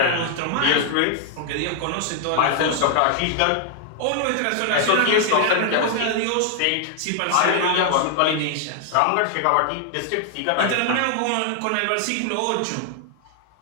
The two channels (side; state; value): both; different; correlation 0.00